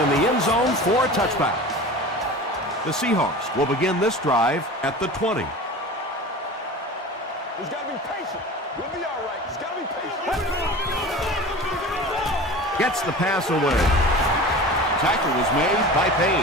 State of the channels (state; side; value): normal; both; correlation 0.35